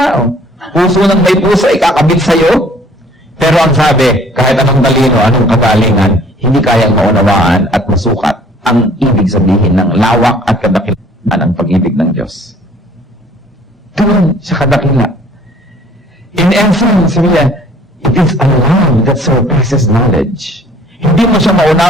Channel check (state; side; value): normal; both; correlation 0.55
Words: Puso ng may puso ay kakabit sa'yo. Pero ang sabi, kahit anong talino, anong kagalingan, hindi kayang maunawaan at masukat ang ibig sabihin ng lawak at kadakilaan ng pag-ibig ng Diyos. Doon sa kadakila. In essence, it is a love that surpasses knowledge. Hindi mo siya